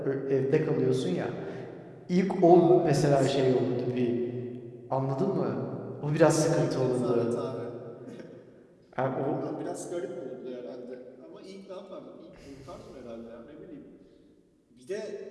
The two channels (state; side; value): identical; both; correlation 1.00